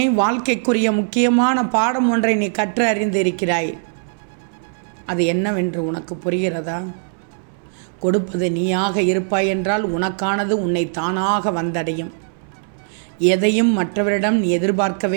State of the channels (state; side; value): silent; left; 66 dB below the other